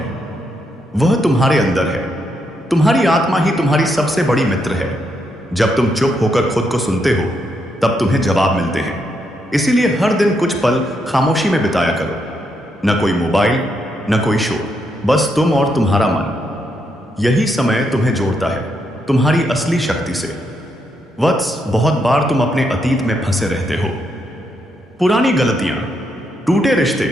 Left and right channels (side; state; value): both; normal; correlation 0.79